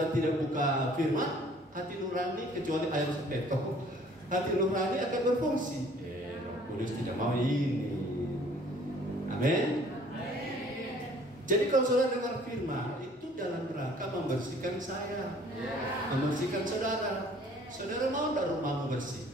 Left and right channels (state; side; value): normal; both; correlation 0.55